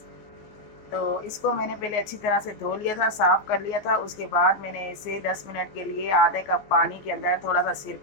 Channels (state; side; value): late; right; 14 ms